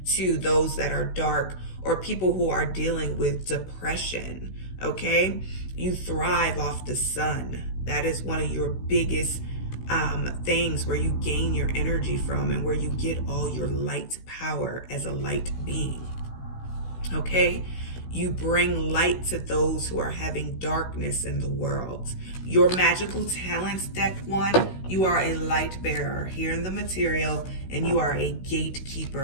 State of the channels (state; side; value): late; right; 16 ms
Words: to those that are dark or people who are dealing with depression. Okay? You thrive off the sun. That is one of your biggest things where you gain your energy from and where you get all your light power as a light being. Okay? You bring light to those who are having darkness in the world. Your magical talents, deck 1, you are a light bearer here in the material, and you are a